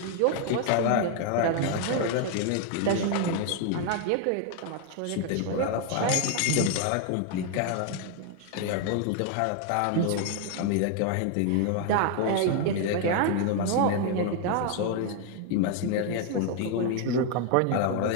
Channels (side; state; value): both; different; correlation 0.00